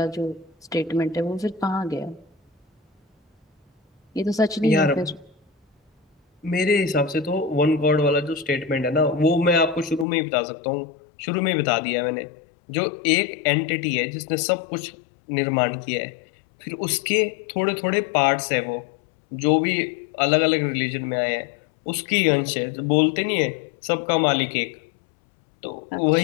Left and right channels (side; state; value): right; drops out; at 10.1 s